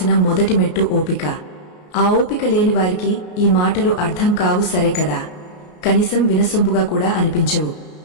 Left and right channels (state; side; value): late; right; 33 ms